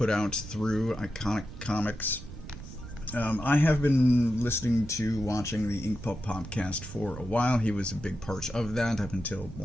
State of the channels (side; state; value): right; noise; rumble, 13 dB below the sound